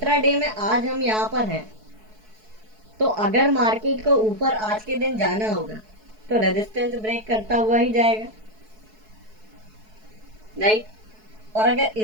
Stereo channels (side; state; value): left; late; 4.6 ms